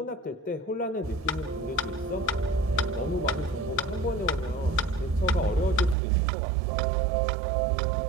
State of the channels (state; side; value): drops out; left; at 6.0 s